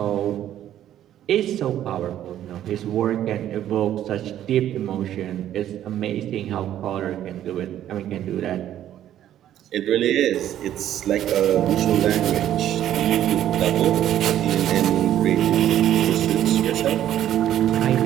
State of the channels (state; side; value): quieter; left; 11.6 dB